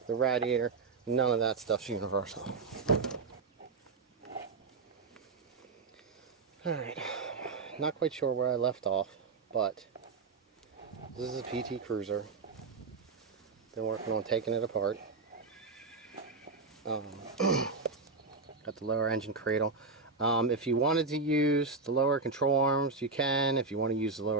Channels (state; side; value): quieter; left; 4.3 dB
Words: the radiator, none of that stuff's universal. Alright, not quite sure where I left off, but this is a PT Cruiser. Been working on taking it apart. Got the lower engine cradle. If you wanted to use the lower control arms, you can. If you want to use the